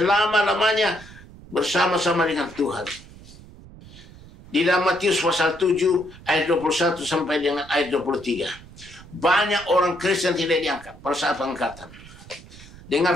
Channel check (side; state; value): right; noise; rumble, 19 dB below the sound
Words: bersama-sama dengan Tuhan. Di dalam Matius pasal 7 ayat 21 sampai dengan ayat 23. Banyak orang Kristen tidak diangkat pada saat pengangkatan.